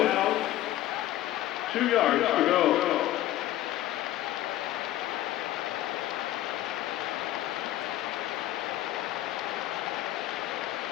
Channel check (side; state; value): right; quieter; 14.3 dB